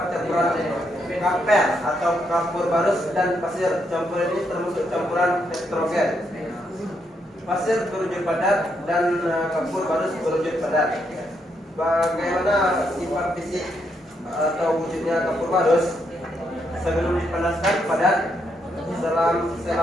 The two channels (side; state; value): both; normal; correlation 0.78